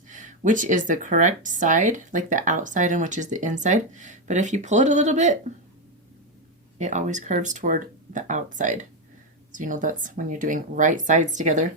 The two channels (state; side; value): normal; both; correlation 0.07